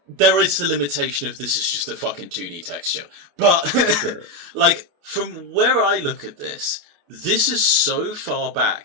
there is the limitation of this is just a fucking 2D texture, but Sure. like from where I look at this is so far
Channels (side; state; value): left; late; 28 ms